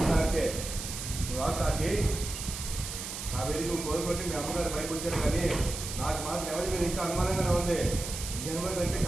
వాకి ఆ వెళ్ళి నువ్వు కోరుకుంటే మీ అమ్మగారు పైకి వచ్చారు, కానీ నాకు మాత్రం ఎవరి మీద ఇంకా అనుమానంగానే ఉంది. జనవరి అంటే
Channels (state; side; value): noise; right; hiss, 7 dB below the sound